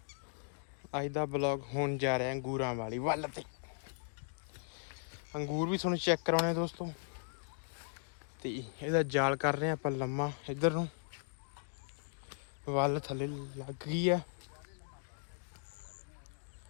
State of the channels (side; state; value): right; silent; digital silence